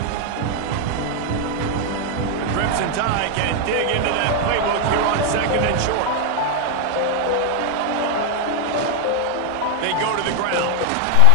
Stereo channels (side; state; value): both; different; correlation 0.00